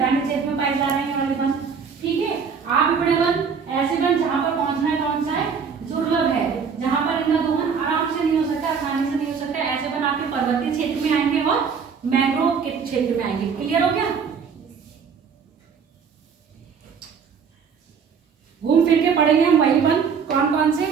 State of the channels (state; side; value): quieter; left; 6.2 dB